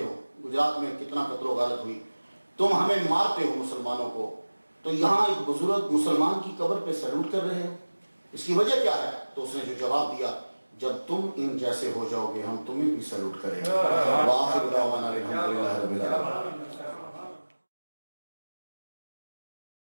ہو، گجرات میں کتنا قتل و غارت ہوئی، تم ہمیں مارتے ہو مسلمانوں کو، تو یہاں ایک بزرگ مسلمان کی قبر پہ سیلوٹ کر رہے ہو، اس کی وجہ کیا ہے؟ تو اس نے جو جواب دیا، جب تم ان جیسے ہو جاؤ گے ہم تمہیں بھی سیلوٹ کریں گے۔ وآخر دعوانا الحمدللہ رب العالمین۔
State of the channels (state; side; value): inverted; both; correlation -1.00